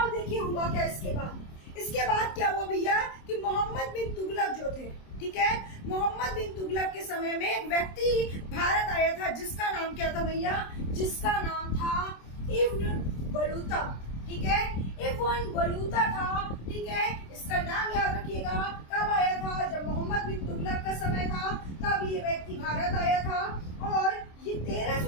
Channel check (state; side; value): late; right; 26 ms